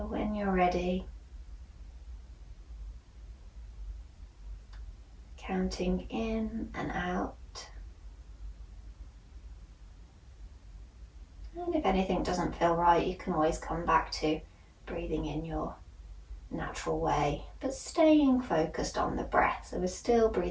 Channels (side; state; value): both; identical; correlation 1.00